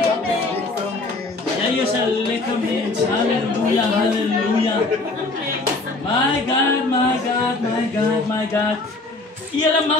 Jy is 'n lekker mens. Halleluja, halleluja. My God, my God, my God, my God. Julle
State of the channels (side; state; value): right; quieter; 3.2 dB